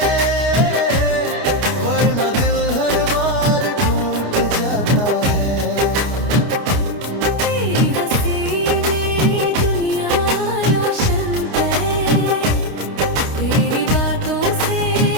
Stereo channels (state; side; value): late; left; 29 ms